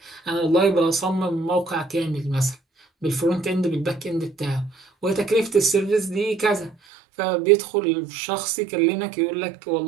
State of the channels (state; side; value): drops out; left; at 6.8 s